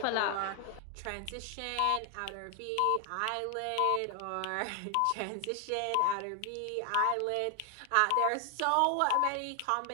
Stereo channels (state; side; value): different; both; correlation 0.00